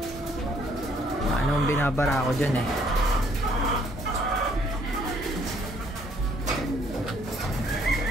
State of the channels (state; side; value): normal; both; correlation 0.64